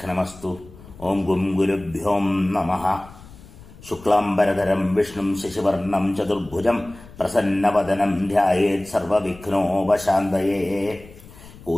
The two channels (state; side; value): noise; left; rumble, 20 dB below the sound